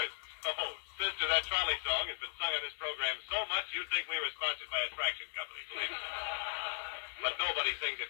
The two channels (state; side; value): silent; right; digital silence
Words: Oh, sister, that trolley song has been sung on this program so much you'd think we were sponsored by a traction company, believe me. But nobody sings it